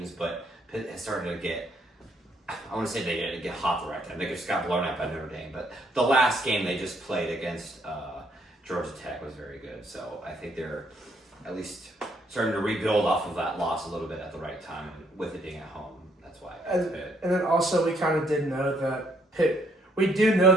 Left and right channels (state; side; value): normal; both; correlation 0.69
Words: but Pitt has started to get. I want to say they get hot the right time. They just got blown out by Notre Dame, but the last game they just played against Georgia Tech was very good. So I think they're at least starting to rebuild off of that loss a little bit at the right time, and with it being at home. That's why. And then also we kind of did know that Pitt. We do know